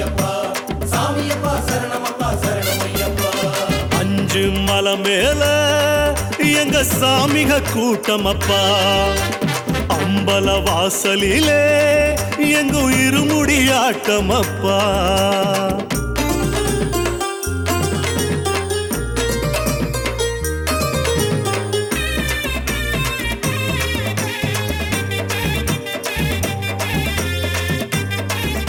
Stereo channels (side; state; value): both; identical; correlation 1.00